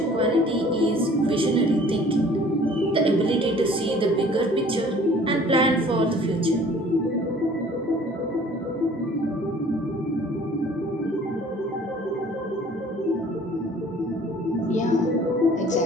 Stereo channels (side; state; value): both; normal; correlation 0.52